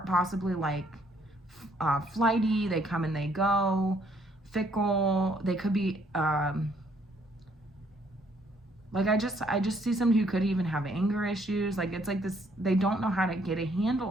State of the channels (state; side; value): normal; both; correlation 0.66